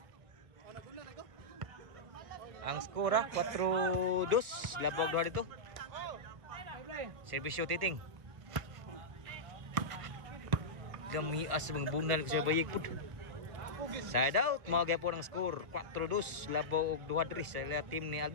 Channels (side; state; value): left; late; 1.3 ms